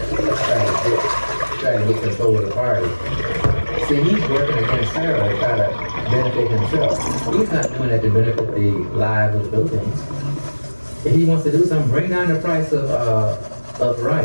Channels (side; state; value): both; inverted; correlation -1.00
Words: to get control of the party. See, he's working against Sara to try to benefit himself. He's not doing that to benefit the lives of the Philippines. If he wants to do something, bring down the price of